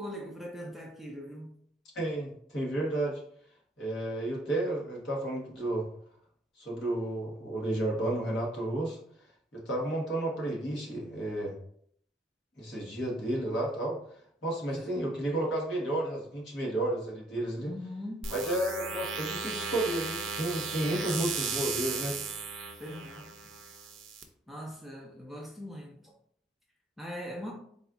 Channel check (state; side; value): normal; both; correlation 0.64